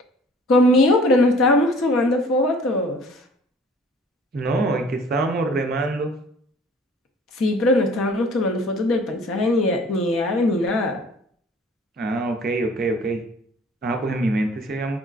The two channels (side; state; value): both; normal; correlation 0.51